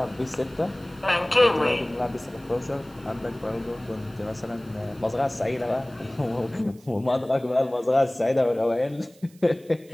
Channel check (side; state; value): right; noise; hiss, 28 dB below the sound